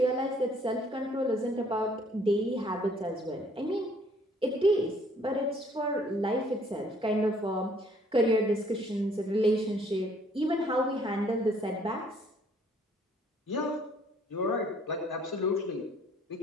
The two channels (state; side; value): normal; both; correlation 0.61